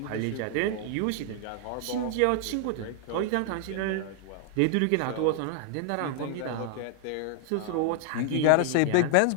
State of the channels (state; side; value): different; both; correlation 0.00